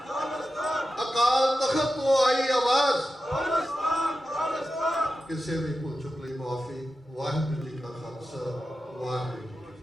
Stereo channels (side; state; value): both; normal; correlation 0.91